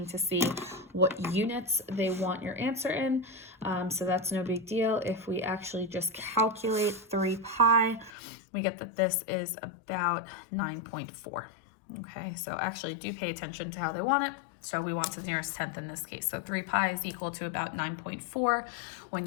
to see what units they want your answer in. So that's no big deal. If we actually just calculate 3 pi, we get that this is about 9.4. Okay, so actually do pay attention to how they want it. So we want to the nearest tenth in this case. So 3 pi is equal to about 9.4 when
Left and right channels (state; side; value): drops out; right; at 8.1 s